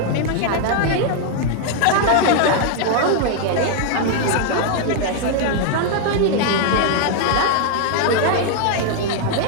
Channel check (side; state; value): both; different; correlation 0.00